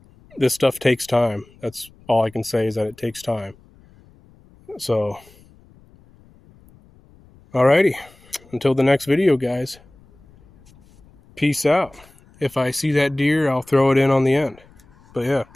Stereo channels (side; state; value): left; noise; rumble, 28 dB below the sound